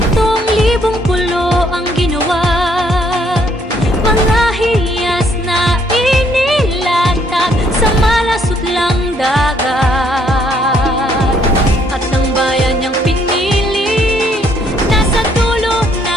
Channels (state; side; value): normal; both; correlation 0.68